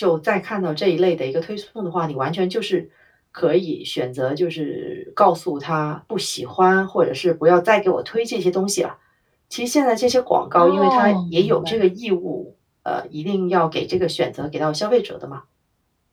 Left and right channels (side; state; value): both; identical; correlation 1.00